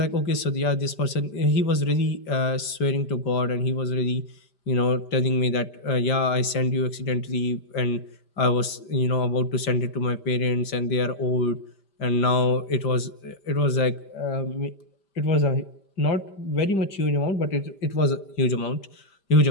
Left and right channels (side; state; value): right; late; 5.1 ms